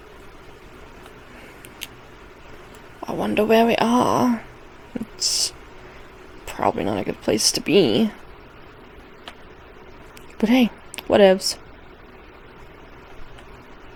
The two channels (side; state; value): both; identical; correlation 1.00